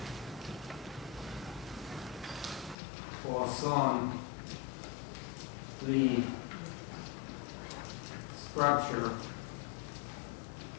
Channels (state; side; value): drops out; right; at 2.8 s